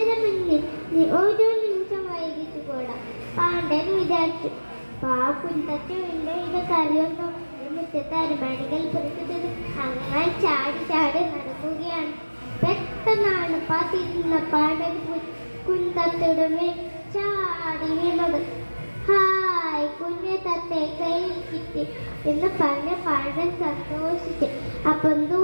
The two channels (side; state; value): both; inverted; correlation -1.00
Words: മുന്നിൽ, നീ ഓരോ നിമിഷം വൈകിട്ട് കൂടാ പാണ്ഡൻ വിചാരിച്ചു. കുഞ്ഞത്തെ ഇത് കറിയൊന്നും മുറ്റത്തെ അരമണികൾ പുറത്തുന്നത് അങ്ങനെ ചാടി ചാടി നടക്കുകയാണ്. പെട്ടെന്നാണ് തിരിഞ്ഞ പാണ്ഡൻ കുഞ്ഞത്തയുടെ മേൽ ചാടി വീണത്. ഹായ്, കുഞ്ഞെ തത്തെ കയ്യിൽ കിട്ടി എന്ന് പറഞ്ഞ പാണ്ഡൻ സന്തോഷിച്ചു. അപ്പം